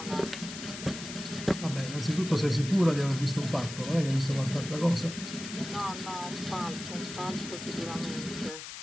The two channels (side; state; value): left; noise; hiss, 10 dB below the sound